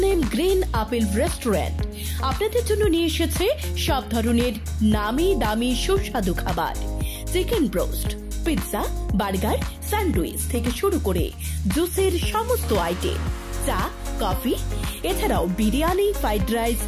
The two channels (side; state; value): both; identical; correlation 1.00